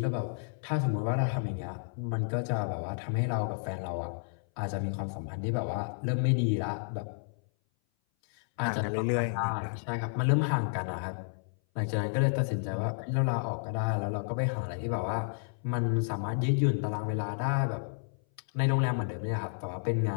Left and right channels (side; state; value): right; silent; 57 dB below the other